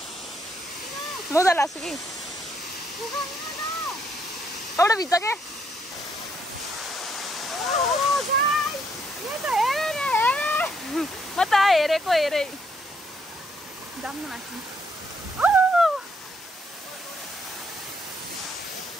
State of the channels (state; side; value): normal; both; correlation 0.72